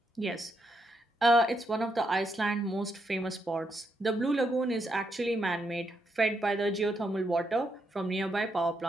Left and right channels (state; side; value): normal; both; correlation 0.80